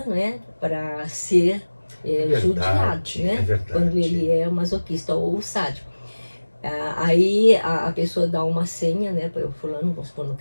né, para ser judiado, né? É verdade. Quando ele é masoquista ou sádico. Aí a pessoa dá uma senha, né, para o fulano, vamos supor, no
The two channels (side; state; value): both; inverted; correlation -1.00